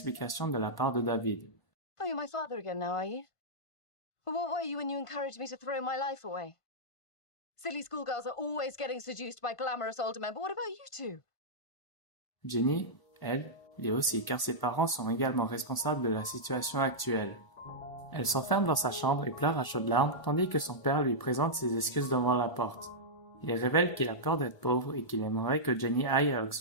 de la part de David. « Oh, you're my father again now, are you? But what were you when you encouraged me to throw my life away? Silly schoolgirls are always getting seduced by glamorous older men, but what about you two? » Jenny, elle, l'est aussi car ses parents sont également responsables de la situation actuelle. Elle s'enferme dans sa chambre et pleure à chaudes larmes tandis que son père lui présente ses excuses devant la porte. Il révèle qu'il a peur d'être pauvre et qu'il aimerait que Jenny aille à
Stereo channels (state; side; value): late; right; 1.0 ms